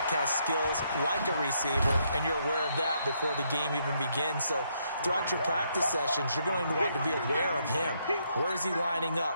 has skills like a receiver, and you're aware of that before the game even begins. So throughout your practice sessions, you're going to want to be aware of him. Where is he lining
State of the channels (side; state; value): both; inverted; correlation -0.74